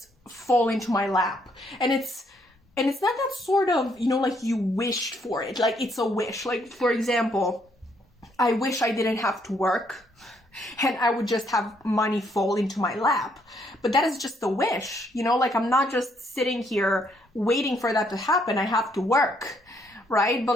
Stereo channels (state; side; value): normal; both; correlation 0.71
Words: fall into my lap. And it's not that sort of, you know, like you wished for it. Like, it's a wish. Like, for example, I wish I didn't have to work and I would just have money fall into my lap. But that is just a wish, you know? Like, I'm not just sitting here waiting for that to happen. I have to work, right? But